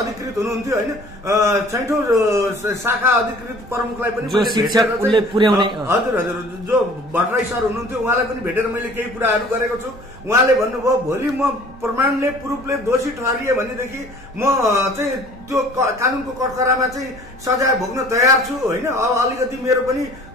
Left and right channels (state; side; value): normal; both; correlation 0.50